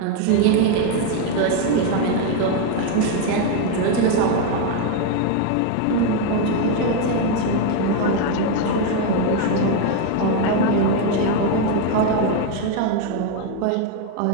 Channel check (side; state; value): both; different; correlation 0.01